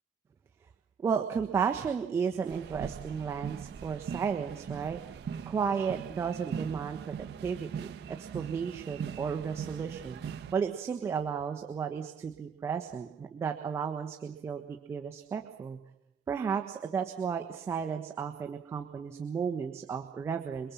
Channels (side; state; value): left; quieter; 6.3 dB